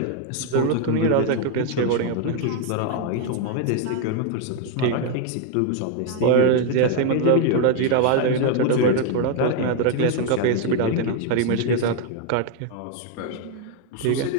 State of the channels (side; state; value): both; different; correlation 0.01